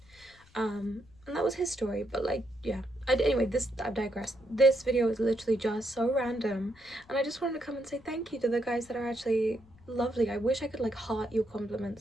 And that was his story. But like, yeah, anyway, I've digressed. This video is literally just so random, and I just wanted to come and say thank you to the guys that are actually lovely. I wish I could like heart your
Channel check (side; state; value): left; noise; rumble, 27 dB below the sound